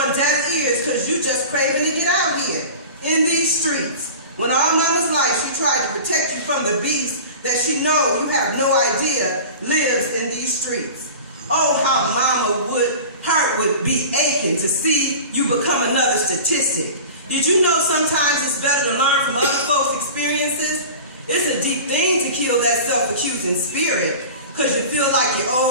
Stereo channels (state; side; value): inverted; both; correlation -0.36